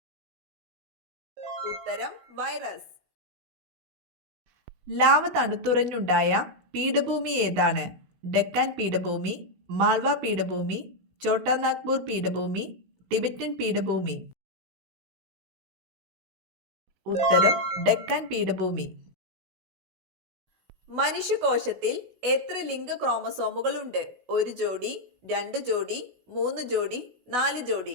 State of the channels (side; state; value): left; late; 16 ms